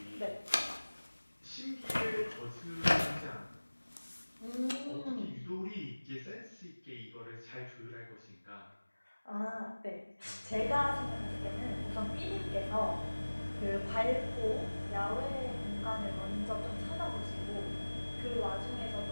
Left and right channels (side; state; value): both; inverted; correlation -1.00